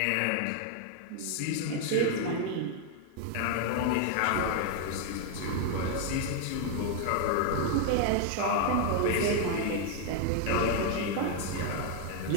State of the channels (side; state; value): both; different; correlation 0.00